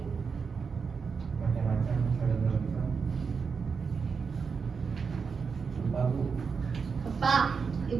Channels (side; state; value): left; quieter; 5.5 dB